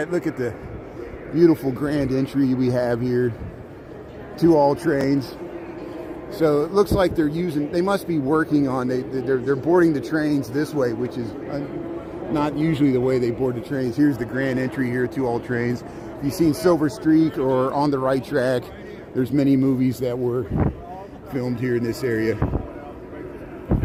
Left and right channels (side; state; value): both; identical; correlation 1.00